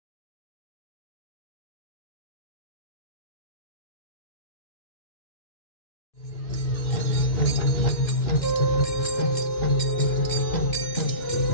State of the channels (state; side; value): late; right; 2.9 ms